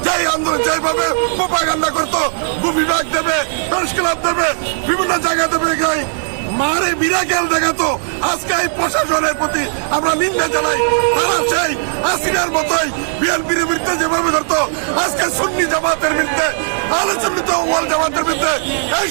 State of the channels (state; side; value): silent; left; digital silence